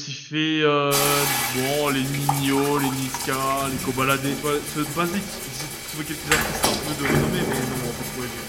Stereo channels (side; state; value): both; identical; correlation 1.00